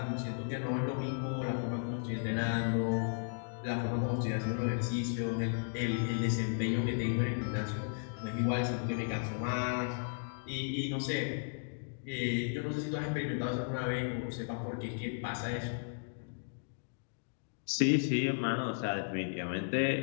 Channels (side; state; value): right; silent; digital silence